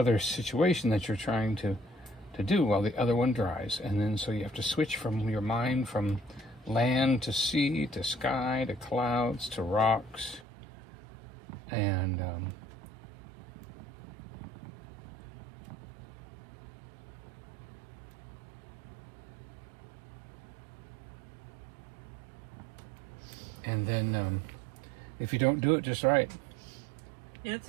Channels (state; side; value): drops out; left; at 10.5 s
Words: situation that you're trying to do while the other one dries. And then so you have to switch from your mind from land to sea to sky to clouds to rocks. And then if you don't do it just right,